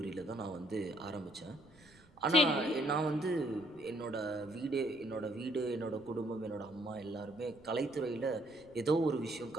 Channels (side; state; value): right; noise; rumble, 26 dB below the sound